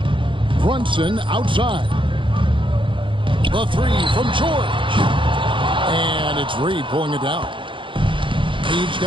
Brunson outside. The three from George. And it's Reed pulling it down. He's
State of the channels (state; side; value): late; left; 0.24 ms